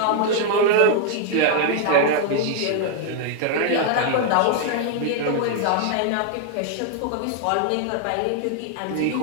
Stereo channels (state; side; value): different; both; correlation 0.00